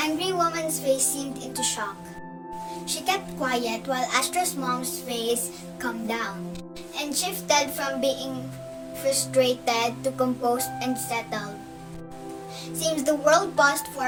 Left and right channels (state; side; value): identical; both; correlation 1.00